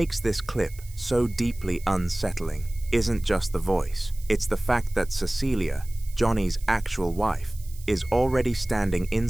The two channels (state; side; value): noise; right; hiss, 21 dB below the sound